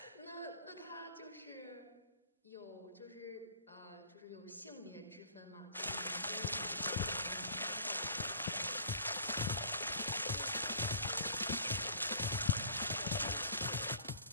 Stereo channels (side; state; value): both; inverted; correlation -0.50